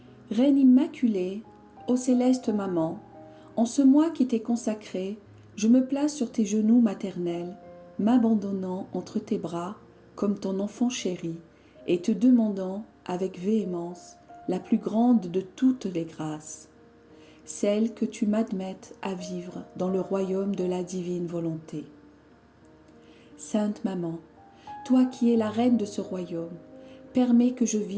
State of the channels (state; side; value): identical; both; correlation 1.00